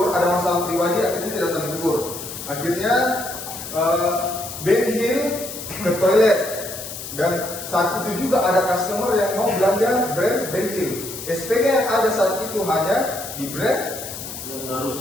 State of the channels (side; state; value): left; noise; hiss, 9 dB below the sound